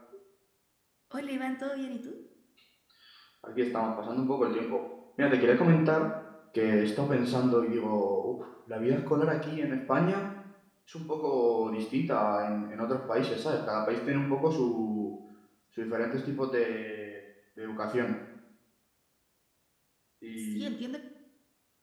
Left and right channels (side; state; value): both; identical; correlation 1.00